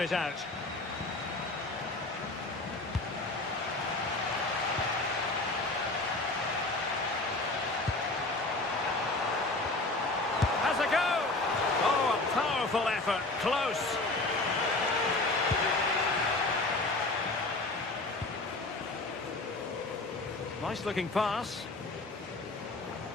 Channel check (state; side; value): quieter; right; 3.0 dB